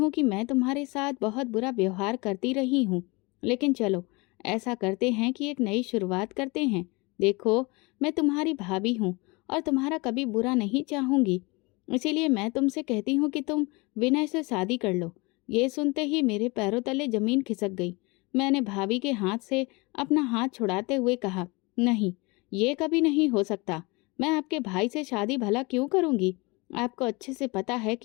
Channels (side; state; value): right; quieter; 26.0 dB